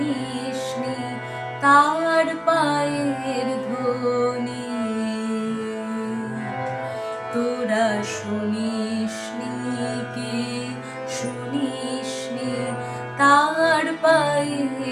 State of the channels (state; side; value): identical; both; correlation 1.00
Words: তার পায়ের ধ্বনি, তোরা শুনিসনি কি শুনিসনি তার